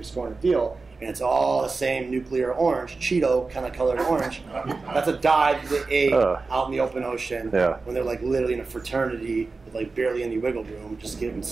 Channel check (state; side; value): quieter; left; 4.0 dB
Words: scoring a deal, and it's all the same nuclear orange, Cheeto kind of colored orange, that's a dye that they ate out in the open ocean when they're literally in a fraternity with barely any wiggle room, just getting